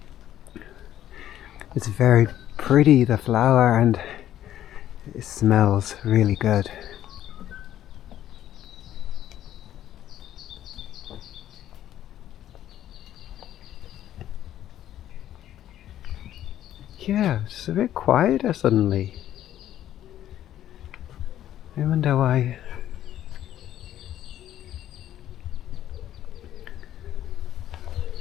It's very pretty, the flower, and it smells really good. Yeah, it's a bit quieter suddenly. I wonder why.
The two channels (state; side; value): quieter; right; 11.9 dB